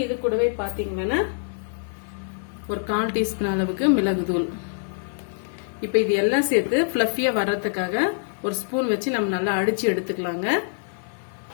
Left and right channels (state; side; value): silent; right; digital silence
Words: இது கூடவே பாத்தீங்கன்னா ஒரு 1/4 டீஸ்பூன் அளவுக்கு மிளகு தூள். இப்போ இது எல்லாம் சேர்த்து ஃபிளஃபியா வர்றதுக்காக ஒரு ஸ்பூன் வச்சு நம்ம நல்லா அடிச்சு எடுத்துக்கலாங்க.